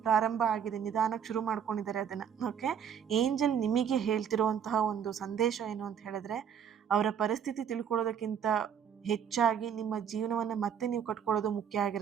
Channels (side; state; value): left; quieter; 8.1 dB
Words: ಪ್ರಾರಂಭ ಆಗಿದೆ. ನಿಧಾನಕ್ಕೆ ಶುರು ಮಾಡ್ಕೊಂಡಿದ್ದಾರೆ ಅದನ್ನು. ಓಕೆ. ಏಂಜಲ್ ನಿಮಗೆ ಹೇಳ್ತಿರುವಂತಹ ಒಂದು ಸಂದೇಶ ಏನು ಅಂತ ಹೇಳಿದ್ರೆ, ಅವರ ಪರಿಸ್ಥಿತಿ ತಿಳ್ಕೊಳ್ಳೋದಕ್ಕಿಂತ ಹೆಚ್ಚಾಗಿ ನಿಮ್ಮ ಜೀವನವನ್ನು ಮತ್ತೆ ನೀವು ಕಟ್ಕೊಳ್ಳೋದು ಮುಖ್ಯ